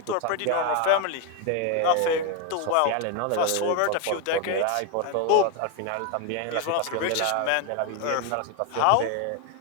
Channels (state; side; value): different; both; correlation 0.01